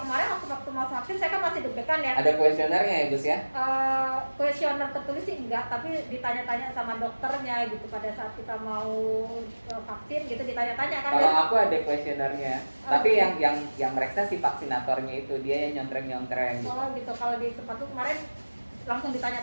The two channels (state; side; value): inverted; both; correlation -1.00